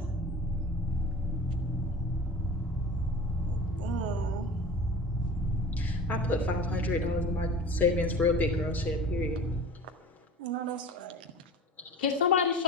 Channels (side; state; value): both; normal; correlation 0.38